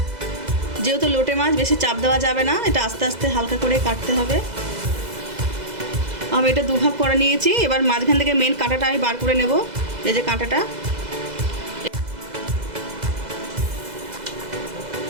যেহেতু লোটে মাছ বেশি চাপ দেওয়া যাবে না, এটা আস্তে আস্তে হালকা করে কাটতে হবে। আমি এটা দুভাগ করে নিয়েছি। এবার মাঝখান থেকে মেন কাঁটাটা আমি বার করে নেব। এই যে কাঁটাটা,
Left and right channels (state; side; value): late; left; 2.0 ms